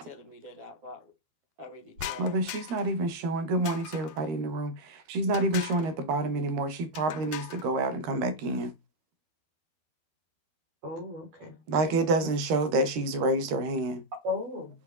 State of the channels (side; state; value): left; late; 13 ms